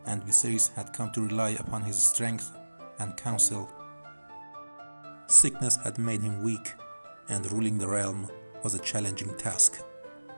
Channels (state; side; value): inverted; both; correlation -1.00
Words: and Viserys had come to rely upon his strength and counsel. Sickness had made him weak, and ruling the realm was a challenging task.